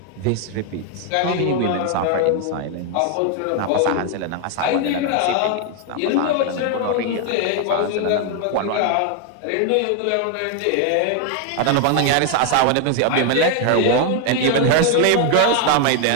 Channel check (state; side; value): different; both; correlation 0.01